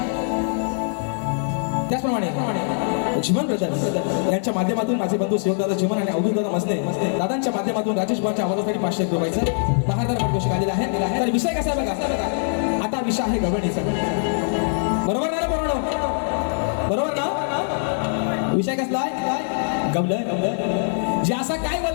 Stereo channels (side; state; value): right; silent; digital silence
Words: त्याचप्रमाणे जीवन ब्रदर्स यांच्या माध्यमातून माझे बंधू शिवदादा जीवन आणि अवधूत दादा मसने दादांच्या माध्यमातून राजेश भावाच्या आवाजासाठी 500 रुपयाचं बहादर पाठ घोषित आलेला आहे तर विषय कसा आहे बघा आता विषय आहे गवळणीचा बरोबर ना बरोबर ना विषय कसला आहे गवळण जे असा काय